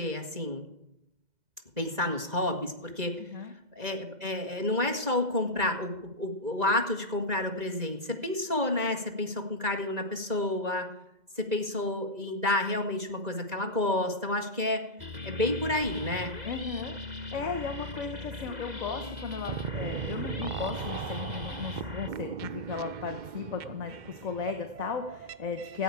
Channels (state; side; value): late; left; 2.0 ms